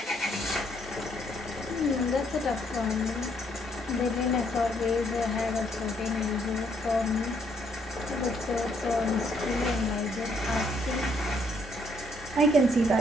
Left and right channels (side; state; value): both; normal; correlation 0.70